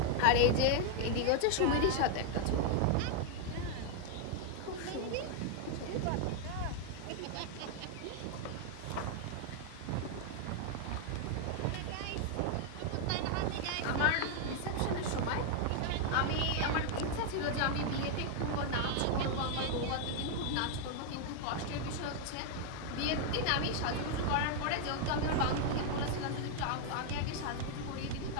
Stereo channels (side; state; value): both; different; correlation 0.00